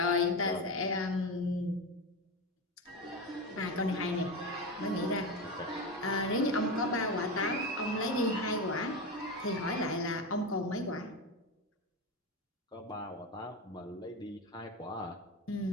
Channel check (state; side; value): normal; both; correlation 0.19